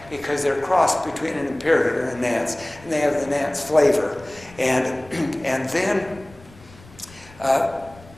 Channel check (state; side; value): noise; left; rumble, 23 dB below the sound